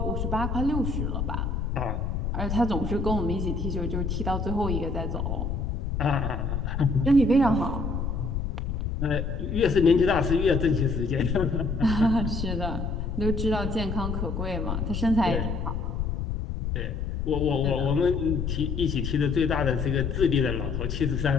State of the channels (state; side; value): noise; left; rumble, 2 dB below the sound